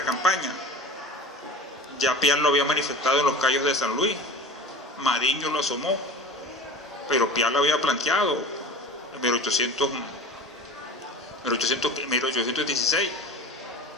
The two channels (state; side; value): normal; both; correlation 0.35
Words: campaña. Ya Piar lo había manifestado en los Cayos de San Luis, Mariño lo asomó, pero Piar lo había planteado en 1816,